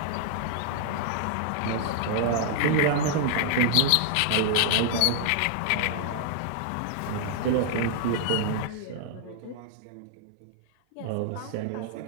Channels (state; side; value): different; both; correlation -0.01